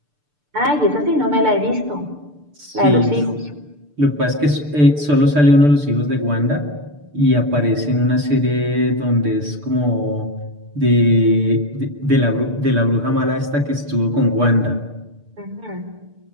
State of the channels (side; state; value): left; late; 6.8 ms